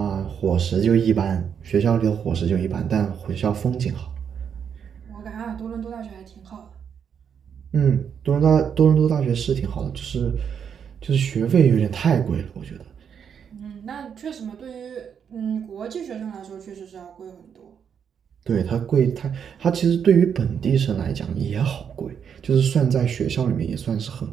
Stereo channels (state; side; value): quieter; left; 7.6 dB